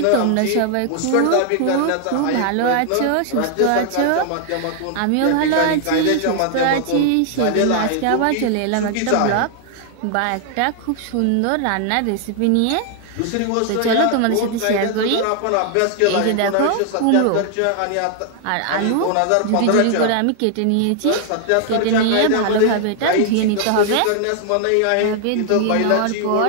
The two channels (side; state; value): both; different; correlation 0.00